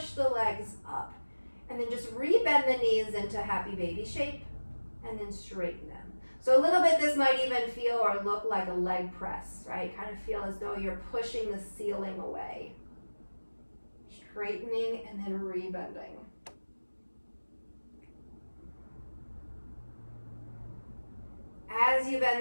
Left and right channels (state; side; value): inverted; both; correlation -1.00